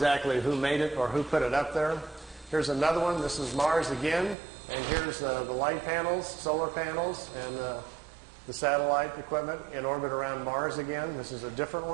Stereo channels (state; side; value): drops out; left; at 4.4 s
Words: who made it or who put it up there. Here's another one. This is Mars again, and here's the light panels, solar panels, and the satellite equipment in orbit around Mars again. This is a different